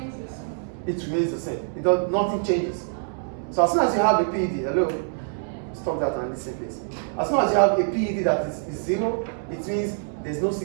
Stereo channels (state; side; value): silent; left; 62 dB below the other